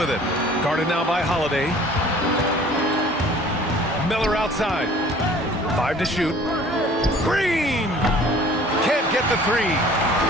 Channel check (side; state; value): both; normal; correlation 0.50